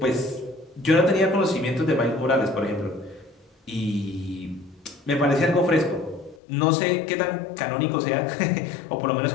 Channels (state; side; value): drops out; right; at 6.4 s